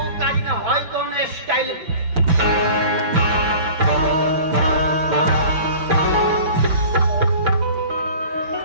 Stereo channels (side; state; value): left; late; 5.9 ms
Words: काज ना होय कौन स्टाइल।